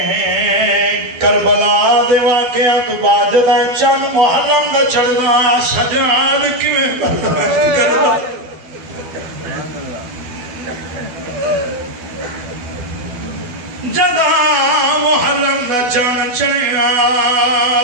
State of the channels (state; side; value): late; left; 12 ms